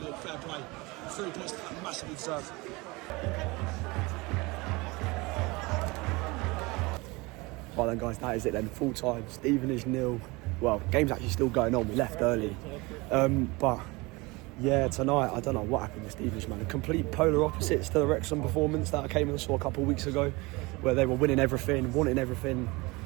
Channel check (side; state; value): left; quieter; 24.2 dB